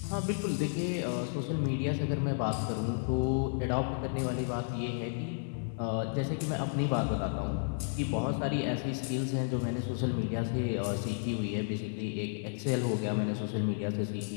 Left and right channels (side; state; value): right; silent; 56 dB below the other